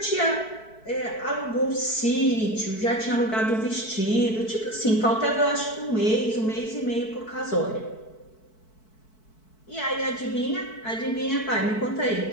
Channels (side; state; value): right; late; 4.6 ms